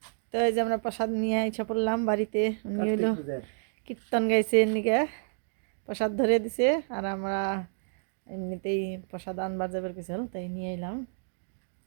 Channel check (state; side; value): silent; left; digital silence